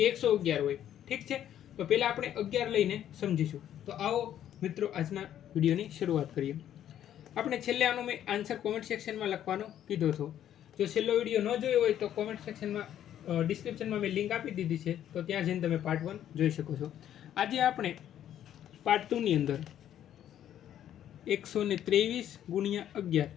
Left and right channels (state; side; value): quieter; right; 10.8 dB